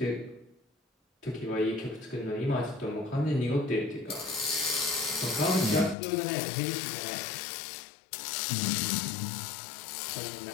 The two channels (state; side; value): drops out; right; at 6.0 s